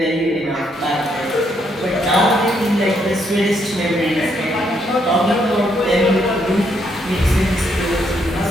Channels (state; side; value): normal; both; correlation 0.74